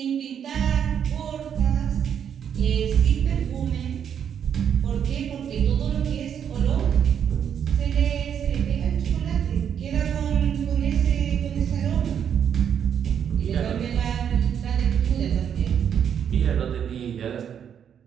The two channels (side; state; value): left; quieter; 8.4 dB